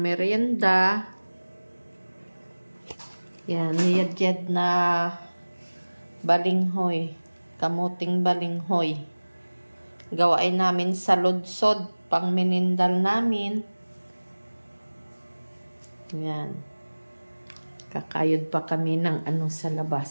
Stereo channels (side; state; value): both; inverted; correlation -1.00